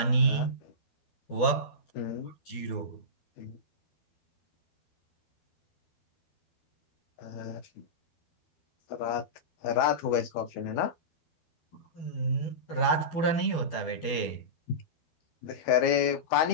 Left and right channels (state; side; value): late; right; 12 ms